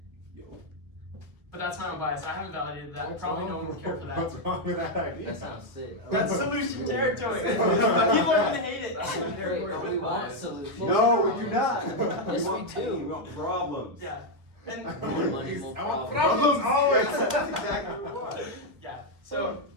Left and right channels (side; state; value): left; late; 1.4 ms